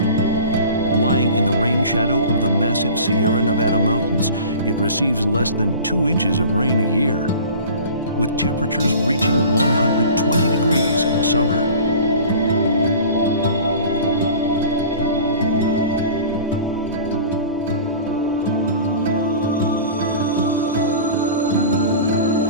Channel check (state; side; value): inverted; both; correlation -0.40